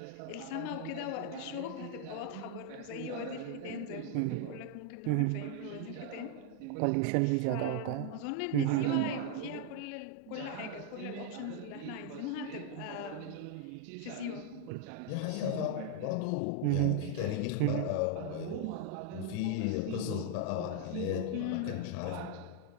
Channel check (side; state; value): both; different; correlation 0.00